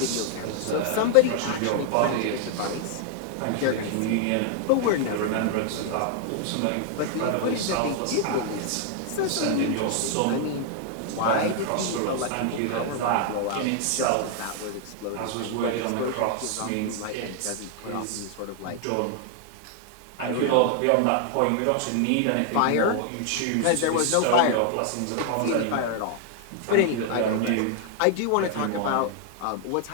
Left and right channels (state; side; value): different; both; correlation 0.00